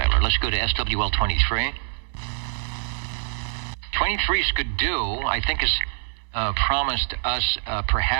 Let's go to SWL 23. 23 is good do. I think has promised us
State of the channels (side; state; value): left; silent; digital silence